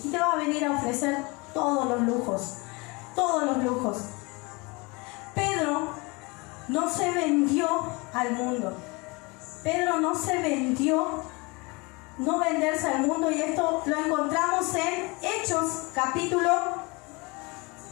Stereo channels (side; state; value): right; quieter; 27.0 dB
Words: y te va a venir a ofrecer todos los lujos. Pedro no se vendió al mundo. Pedro no se vendió, no venderse al mundo, y esto lo encontramos en Hechos capítulo